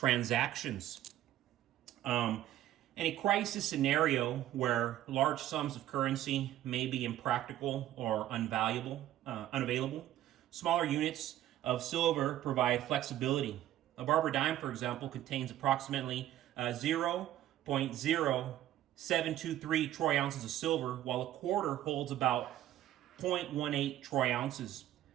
In a crisis scenario where large sums of currency may be impractical or unavailable, smaller units of silver provide flexibility. A Barber dime, for example, contains approximately 0.0723 troy ounces of silver, while a quarter holds about 0.18 troy ounces.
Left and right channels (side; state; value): left; quieter; 13.0 dB